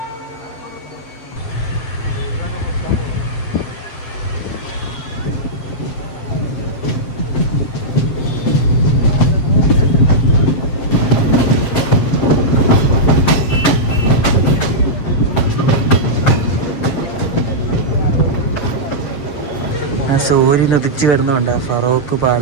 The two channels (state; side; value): late; right; 7.6 ms